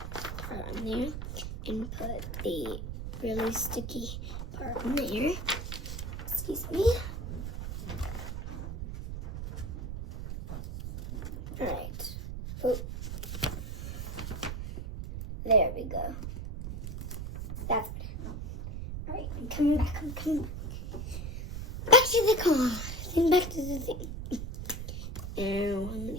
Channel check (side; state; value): right; noise; rumble, 6 dB below the sound